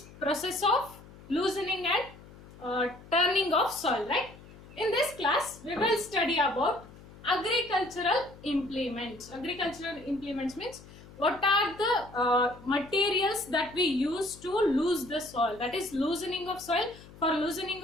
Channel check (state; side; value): noise; left; hum, 20 dB below the sound